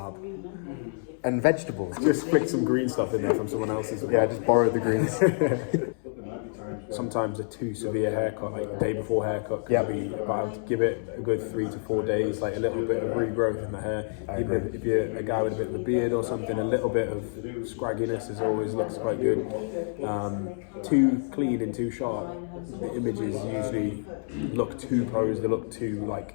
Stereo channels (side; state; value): right; silent; 59 dB below the other